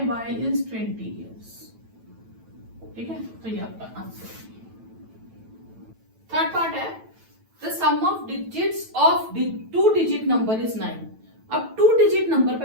is 20 years, ठीक है। तो ये आपका आंसर है। थर्ड पार्ट है the sum of digits of 2 digit number is 9। अब 2 डिजिट नंबर,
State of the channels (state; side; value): late; left; 9.1 ms